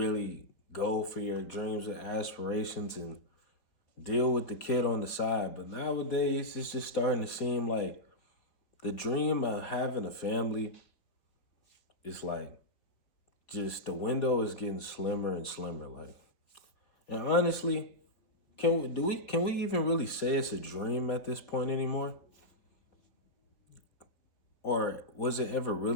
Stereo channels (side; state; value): right; late; 4.1 ms